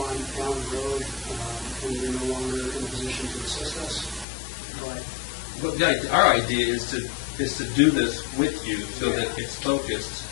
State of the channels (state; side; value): drops out; right; at 4.2 s